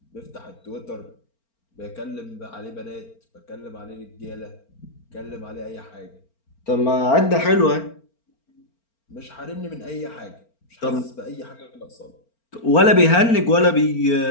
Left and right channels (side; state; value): right; late; 4.4 ms